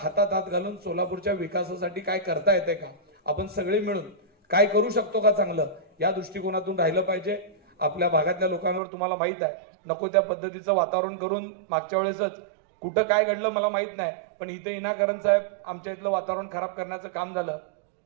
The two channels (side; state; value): left; drops out; at 8.8 s